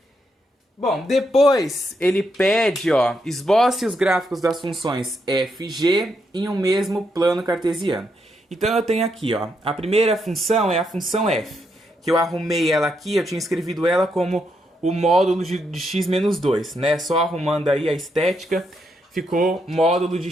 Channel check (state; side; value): normal; both; correlation 0.80